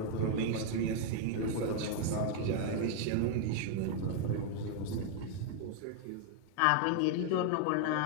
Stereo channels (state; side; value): different; both; correlation 0.00